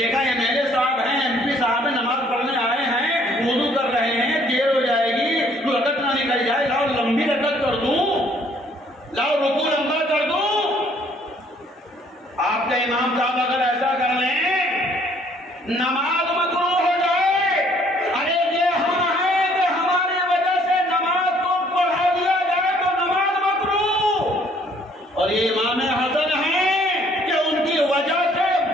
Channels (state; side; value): normal; both; correlation 0.62